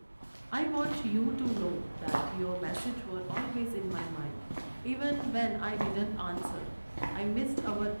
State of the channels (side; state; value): both; inverted; correlation -1.00